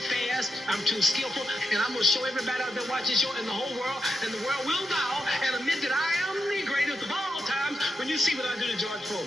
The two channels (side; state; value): both; normal; correlation 0.84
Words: fast, I'm too skillful, and I'm going to show everybody out there watching this show and the whole world, and the world will bow and admit that I am the greatest of all times when you see what I do to George